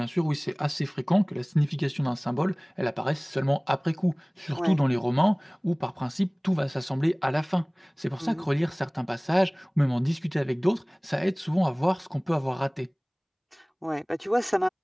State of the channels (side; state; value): both; identical; correlation 1.00